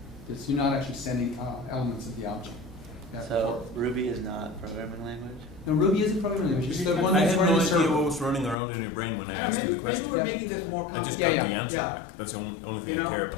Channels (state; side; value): drops out; right; at 8.6 s